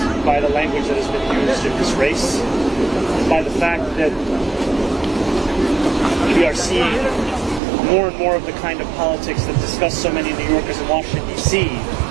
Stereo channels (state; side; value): drops out; left; at 7.6 s